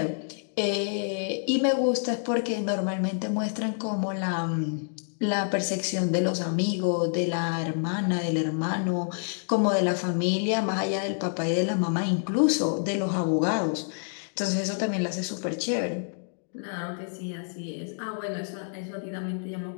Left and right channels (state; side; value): silent; right; digital silence